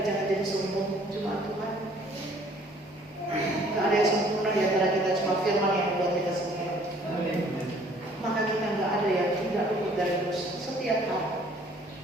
jangan jadi sombong cuma Tuhan. Tidak ada yang sempurna di antara kita, cuma firman yang membuat kita sempurna. Maka kita nggak ada yang tidak luput dari dosa. Setiap hari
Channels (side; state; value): both; normal; correlation 0.57